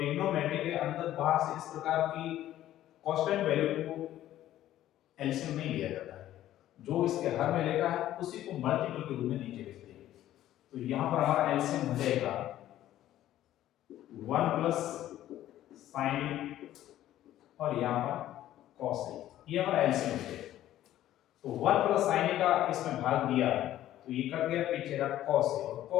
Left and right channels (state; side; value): quieter; right; 13.1 dB